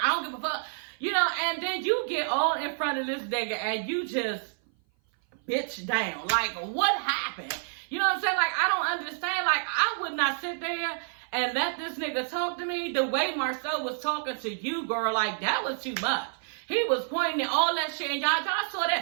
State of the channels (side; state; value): left; silent; 56 dB below the other